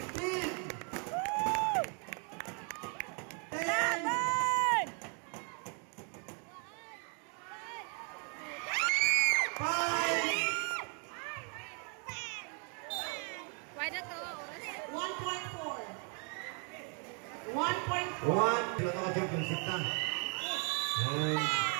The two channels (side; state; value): left; quieter; 39.0 dB